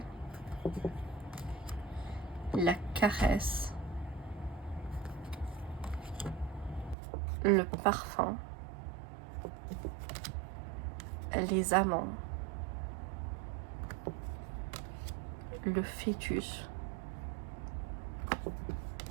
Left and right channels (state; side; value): drops out; left; at 7.0 s